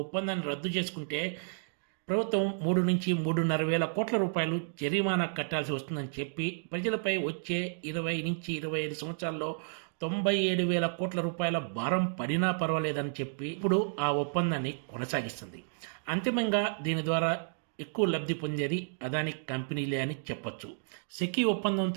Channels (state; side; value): silent; left; digital silence